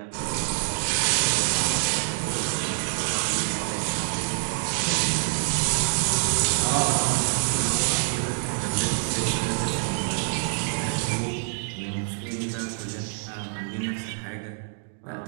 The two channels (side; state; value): left; silent; 61 dB below the other